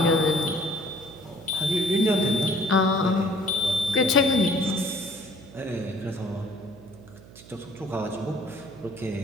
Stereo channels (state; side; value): noise; right; hum, 20 dB below the sound